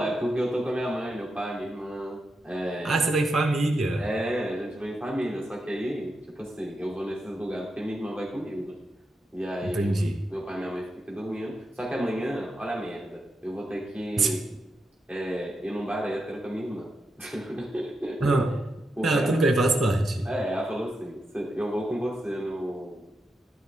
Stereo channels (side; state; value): both; normal; correlation 0.86